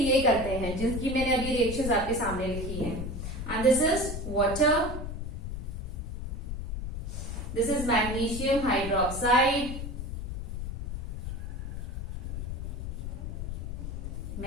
ये करते हैं जिनकी मैंने अभी रिएक्शंस आपके सामने लिखी है। And this is water, this is magnesium hydroxide,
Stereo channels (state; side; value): noise; left; rumble, 5 dB below the sound